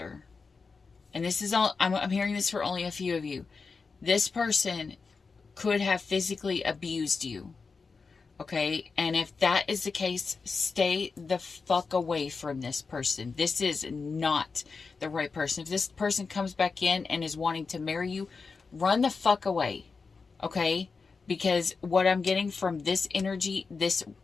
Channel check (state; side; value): quieter; right; 4.7 dB